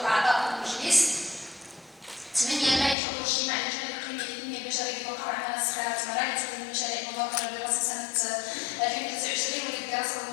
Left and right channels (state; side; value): drops out; right; at 3.0 s